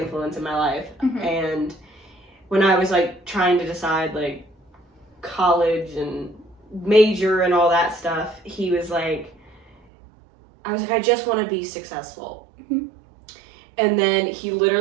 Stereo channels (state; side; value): drops out; left; at 9.8 s